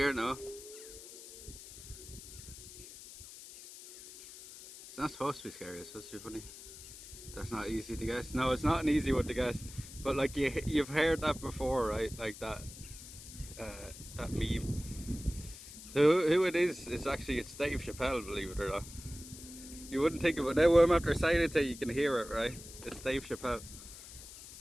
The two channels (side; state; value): left; noise; hiss, 15 dB below the sound